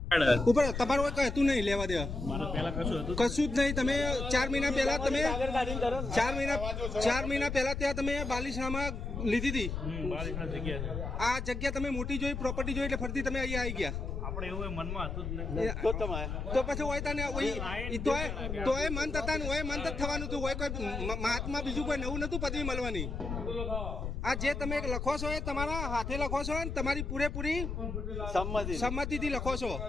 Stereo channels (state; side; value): noise; left; rumble, 4 dB below the sound